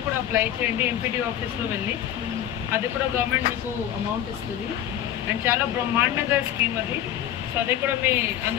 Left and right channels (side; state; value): right; quieter; 11.2 dB